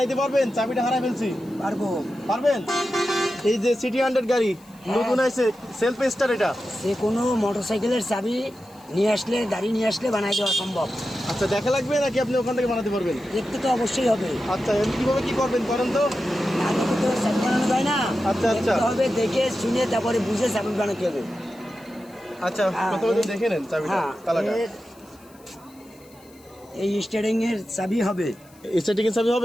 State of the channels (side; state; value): left; noise; hiss, 28 dB below the sound